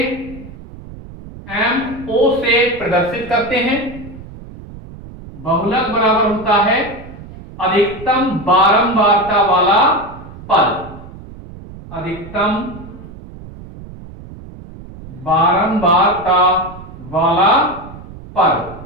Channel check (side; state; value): right; noise; rumble, 16 dB below the sound